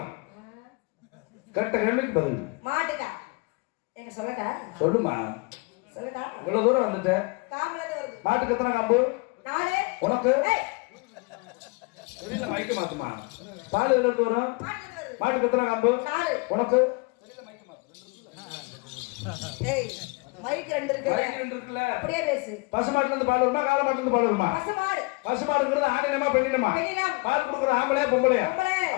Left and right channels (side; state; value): right; quieter; 28.8 dB